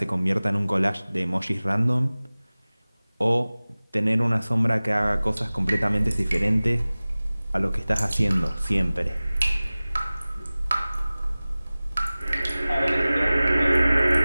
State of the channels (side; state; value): both; inverted; correlation -0.98